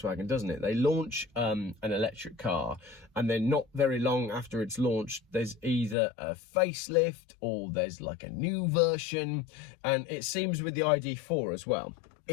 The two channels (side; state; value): right; drops out; at 6.0 s